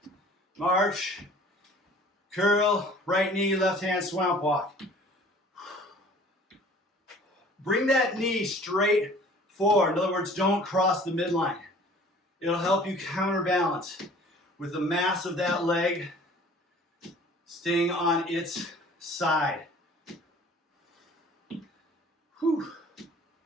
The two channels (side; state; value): both; normal; correlation 0.50